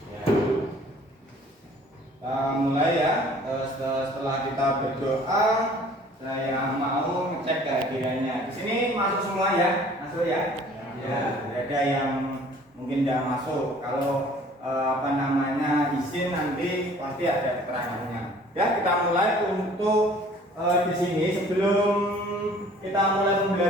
Ya. Mulai ya. Setelah kita berdoa, saya mau ngecek kehadirannya. Di sini masuk semua ya, masuk ya. Ya, ada yang mungkin tidak masuk. Kalau izin nanti pasti ada keterangannya. Ya, kita mulai untuk di sini sebelum kita mulai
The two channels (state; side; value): normal; both; correlation 0.52